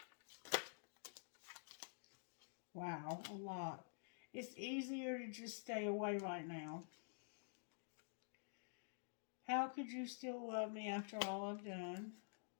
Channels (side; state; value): right; silent; digital silence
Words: Wow, a lot. It's easier to just stay away right now. How could you still love me after all I've done?